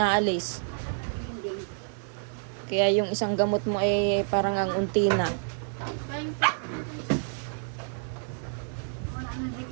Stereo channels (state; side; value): silent; left; digital silence